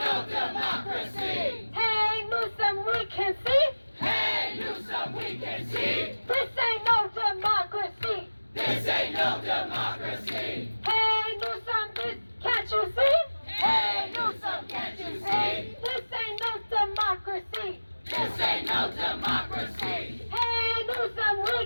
democracy. Hey, Newsom, we can see. Hey, Newsom, we can see. This ain't no democracy. This ain't no democracy. Hey, Newsom, can't you see? Hey, Newsom, can't you see? This ain't no democracy. This ain't no democracy. Hey, Newsom, we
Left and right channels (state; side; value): inverted; both; correlation -1.00